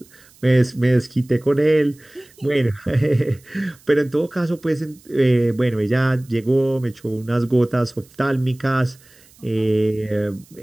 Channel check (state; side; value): noise; right; hiss, 28 dB below the sound